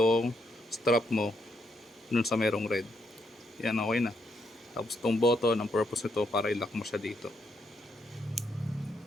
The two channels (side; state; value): both; normal; correlation 0.77